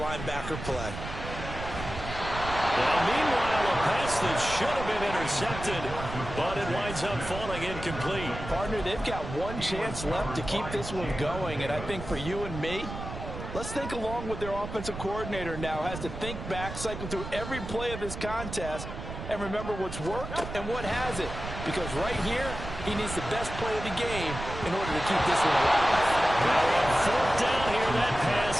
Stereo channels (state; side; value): noise; right; rumble, 9 dB below the sound